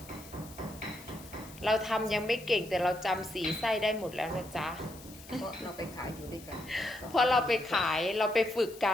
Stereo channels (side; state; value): left; noise; hiss, 19 dB below the sound